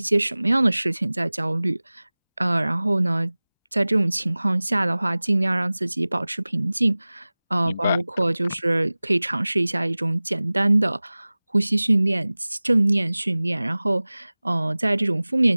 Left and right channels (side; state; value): both; inverted; correlation -0.99